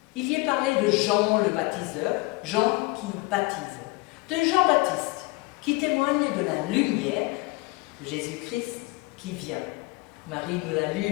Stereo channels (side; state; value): right; quieter; 24.3 dB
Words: Il y est parlé de Jean le baptiseur, Jean qui baptise, de Jean-Baptiste qui témoigne de la lumière de Jésus-Christ qui vient. Marie nous l'a